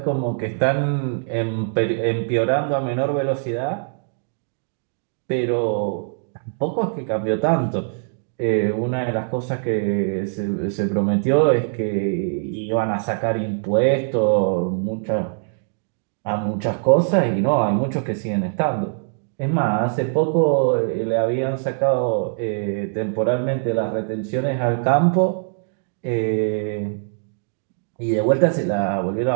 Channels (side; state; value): left; silent; digital silence